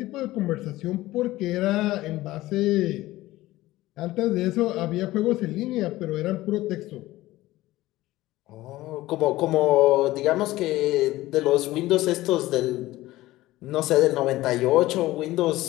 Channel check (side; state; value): right; quieter; 17.1 dB